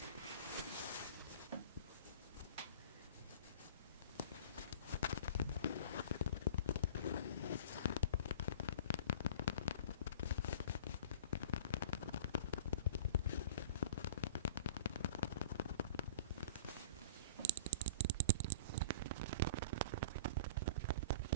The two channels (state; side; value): inverted; both; correlation -0.41